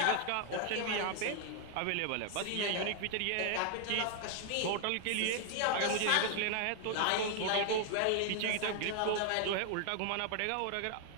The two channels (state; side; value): different; both; correlation 0.00